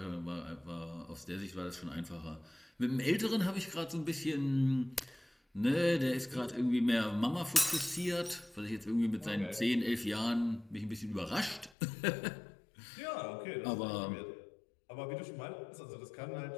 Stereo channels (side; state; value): right; drops out; at 11.7 s